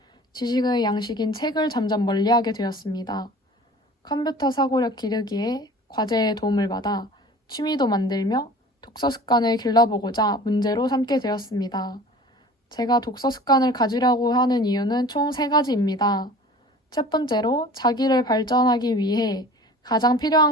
지식의 양식인 책을 점점 멀리하게 되었습니다. 컴퓨터 사고력 기르기에 과제에 도움을 받아 취미도 만들며 독서 습관을 길러보고자 문제로 삼게 되었습니다. 제가 독서 습관을 가지려고 하는 이유는 총 3가지입니다. 첫 번째로 자기를 발전하기 위해 가장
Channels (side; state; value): both; normal; correlation 0.43